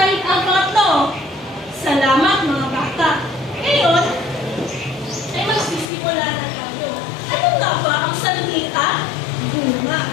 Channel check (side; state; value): right; drops out; at 5.9 s